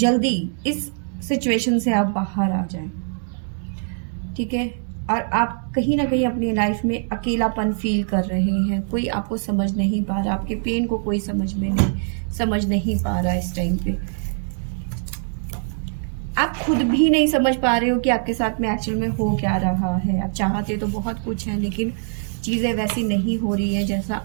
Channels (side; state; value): left; silent; digital silence